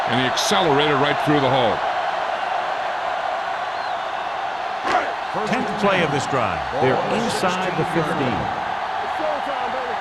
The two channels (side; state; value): both; identical; correlation 1.00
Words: and he accelerated right through the hole. 10th play of this drive. They're inside the 15. It's showtime, baby.